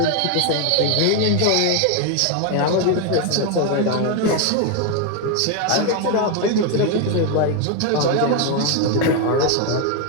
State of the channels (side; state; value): both; different; correlation 0.01